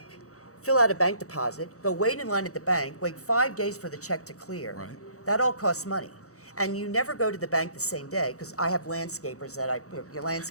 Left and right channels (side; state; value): right; late; 0.65 ms